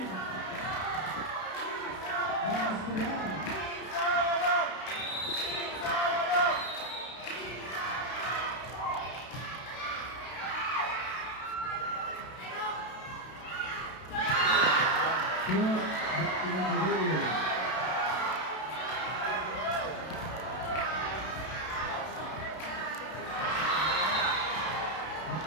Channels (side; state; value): right; late; 32 ms